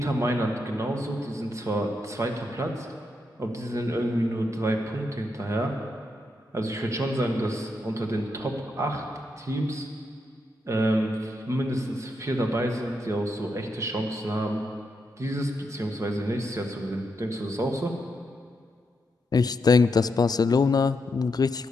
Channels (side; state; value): both; normal; correlation 0.82